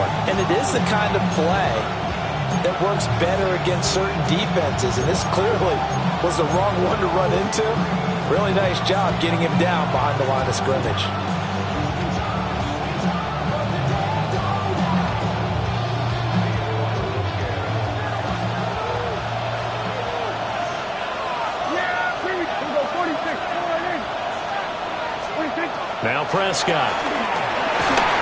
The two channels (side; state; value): both; identical; correlation 1.00